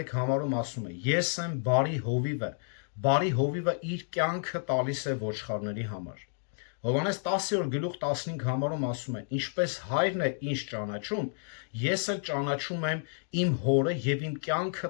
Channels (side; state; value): right; silent; digital silence